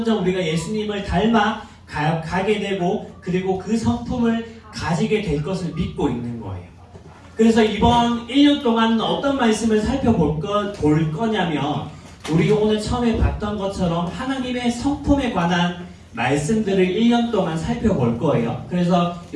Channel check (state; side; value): identical; both; correlation 1.00